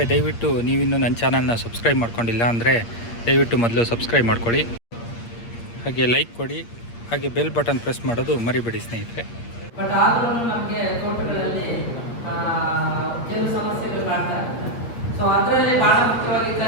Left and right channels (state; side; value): late; right; 8.6 ms